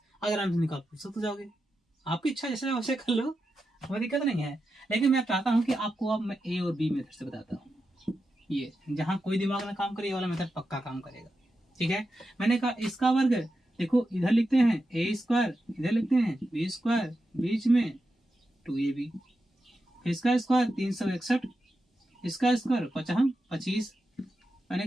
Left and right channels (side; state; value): both; normal; correlation 0.89